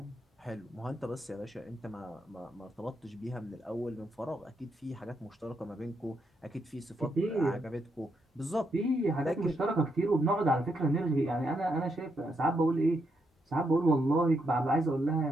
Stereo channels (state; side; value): normal; both; correlation 0.79